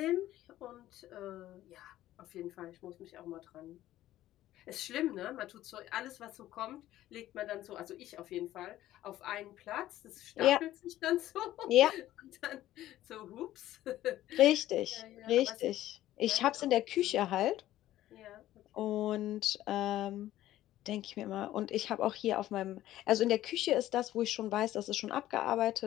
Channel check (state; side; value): quieter; right; 14.2 dB